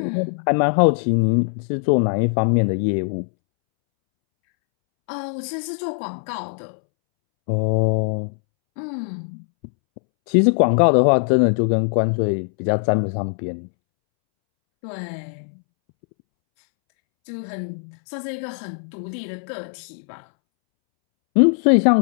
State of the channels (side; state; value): right; silent; 65 dB below the other